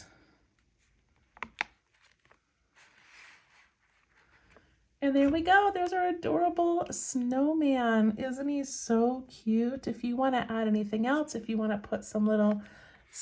And there we go. There's our adorable snowman. Isn't he so cute? If you want to add anything else, if you want to put some little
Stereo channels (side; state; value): both; identical; correlation 1.00